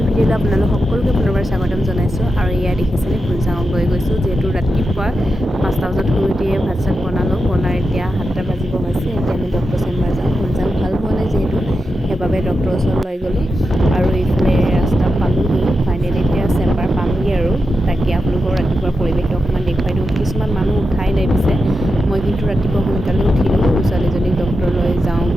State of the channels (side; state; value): both; normal; correlation 0.89